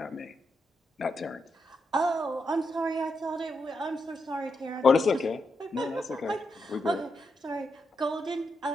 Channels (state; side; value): normal; both; correlation 0.84